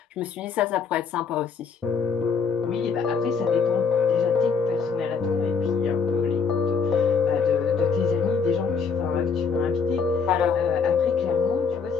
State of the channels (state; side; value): quieter; right; 5.5 dB